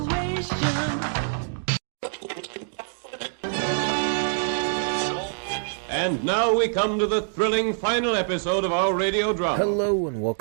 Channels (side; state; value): left; silent; digital silence